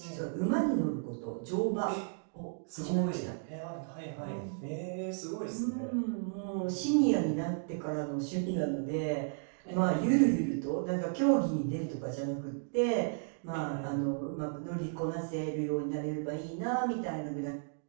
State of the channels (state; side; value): silent; left; digital silence